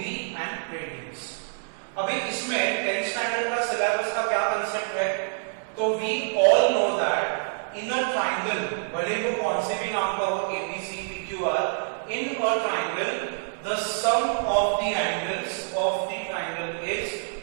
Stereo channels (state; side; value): silent; left; digital silence